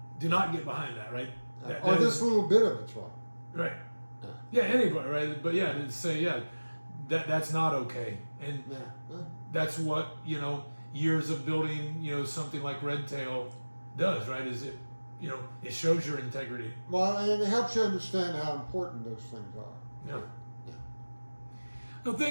Do not get behind that, right? Or this little bit of it's wrong. Right. Yeah, anybody, right? But yeah, to say, that's not okay. And that's what, years of building, something like Red Tail does, right? Is it, it shows your integrity. Well, and it helps you understand how important those things are. Yeah. Yeah. Well,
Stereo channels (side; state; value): both; inverted; correlation -1.00